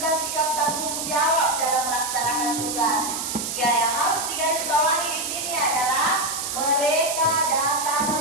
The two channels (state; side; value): noise; right; hiss, 3 dB below the sound